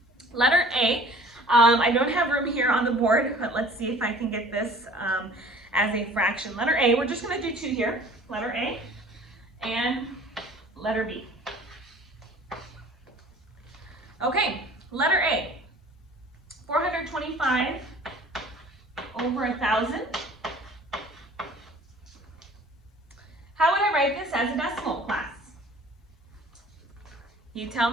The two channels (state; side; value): normal; both; correlation 0.48